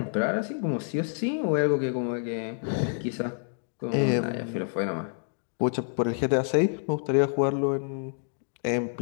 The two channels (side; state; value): right; silent; 59 dB below the other